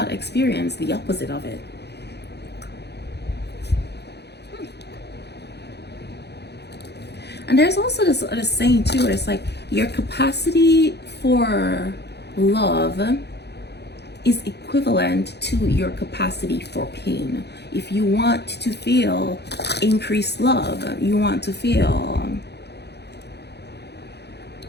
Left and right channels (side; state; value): right; late; 0.49 ms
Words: experienced the opposite of it? And there's also this other saying too, where it's like, your capacity for love is equivalent to your capacity for pain. If you want to feel increased love, you want to feel